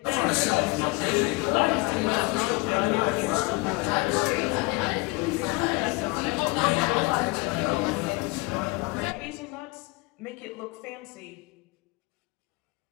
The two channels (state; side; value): quieter; right; 25.5 dB